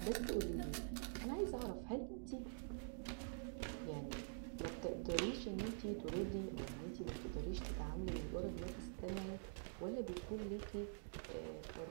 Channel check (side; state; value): left; silent; digital silence